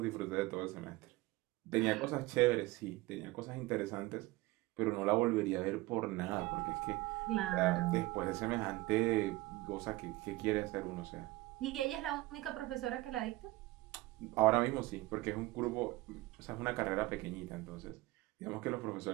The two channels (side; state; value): left; quieter; 19.9 dB